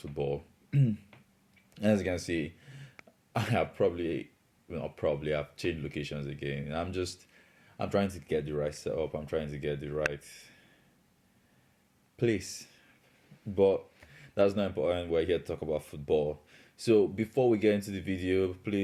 As you can see, I have I've changed locations again. I'm trying to get the right setup. I'm trying to get the right place, but that's not important. We're here to talk about football. So before we get into the video,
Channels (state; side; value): identical; both; correlation 1.00